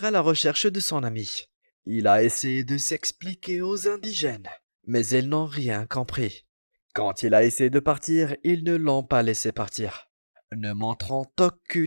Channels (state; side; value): inverted; both; correlation -1.00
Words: à la recherche de son ami. Il a essayé de s'expliquer aux indigènes, mais ils n'ont rien compris. Quand il a essayé de partir, ils ne l'ont pas laissé partir, ne montrant